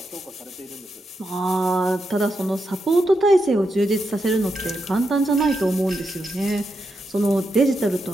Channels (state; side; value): normal; both; correlation 0.84